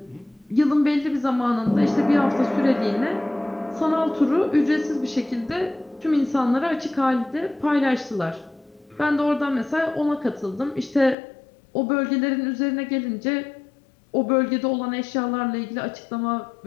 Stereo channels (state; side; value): drops out; right; at 11.2 s